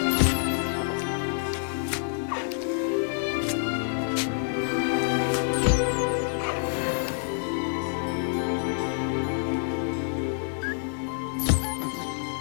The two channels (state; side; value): silent; right; digital silence